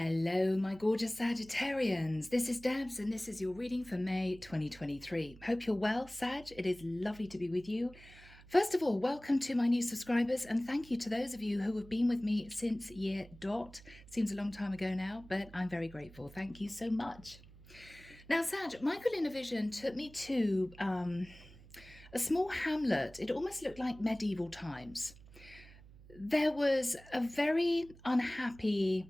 my gorgeous Sagittarians. This is Debs, and this is your reading for May 2023. Hope you're well, Sag. It is lovely to be with you. First of all, welcome to my new subscribers, and thank you to those of you who have been with me since year dot. Seems a long time ago now, but I'm very grateful. Thank you so much. Now, Sag, Michael in a vision took me to a small hamlet. It almost looked like medieval times. There was a very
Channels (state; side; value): noise; right; hum, 21 dB below the sound